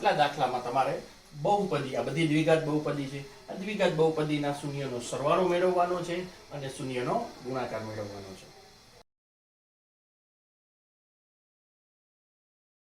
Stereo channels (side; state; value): both; identical; correlation 1.00